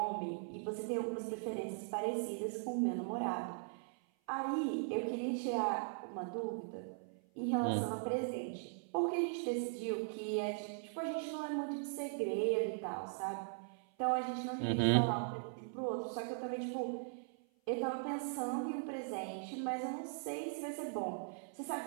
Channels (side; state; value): left; silent; 51 dB below the other